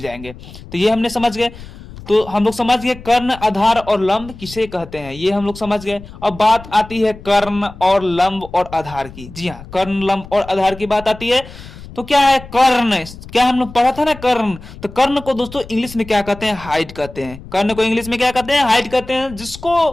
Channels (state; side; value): noise; left; rumble, 16 dB below the sound